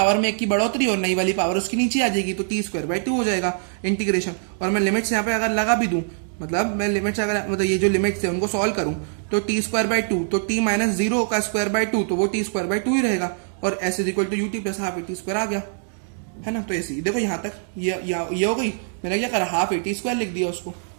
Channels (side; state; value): left; silent; digital silence